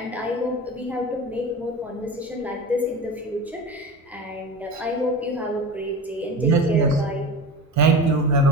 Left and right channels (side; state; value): both; normal; correlation 0.30